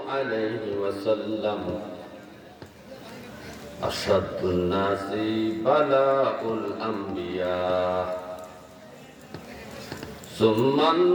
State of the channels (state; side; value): identical; both; correlation 1.00